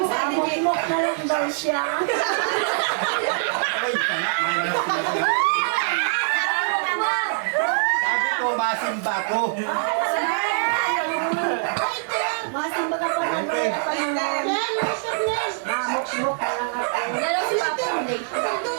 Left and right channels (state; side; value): silent; left; digital silence